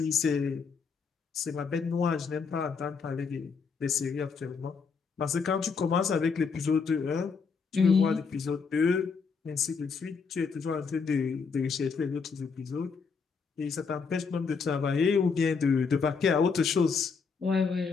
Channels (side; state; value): right; quieter; 5.3 dB